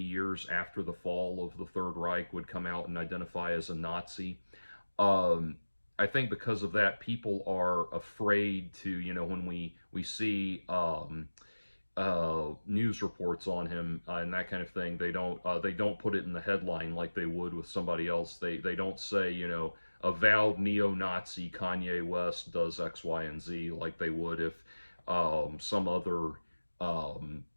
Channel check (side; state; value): both; inverted; correlation -1.00